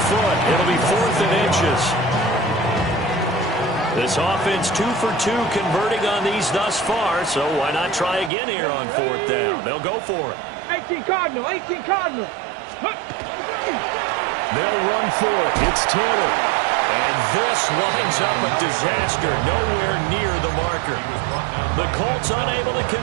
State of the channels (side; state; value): left; drops out; at 8.3 s